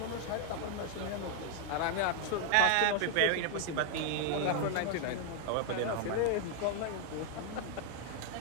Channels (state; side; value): different; both; correlation 0.00